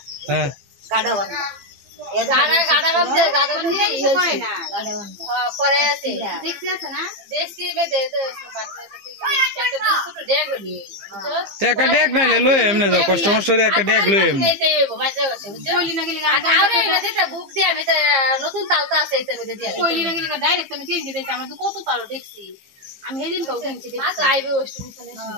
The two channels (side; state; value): left; late; 15 ms